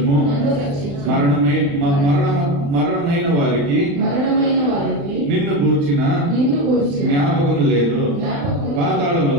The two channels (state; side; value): late; left; 35 ms